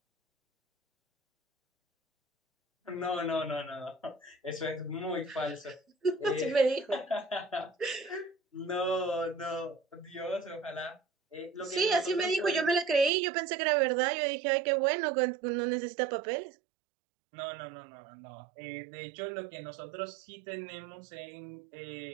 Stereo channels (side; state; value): left; drops out; at 13.1 s